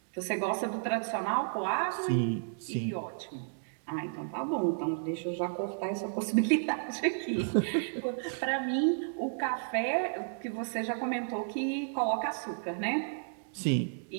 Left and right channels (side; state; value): left; silent; digital silence